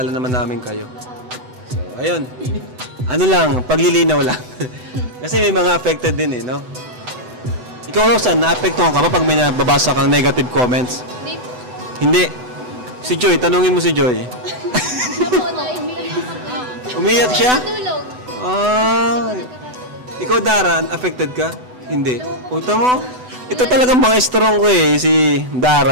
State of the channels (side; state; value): left; late; 8.0 ms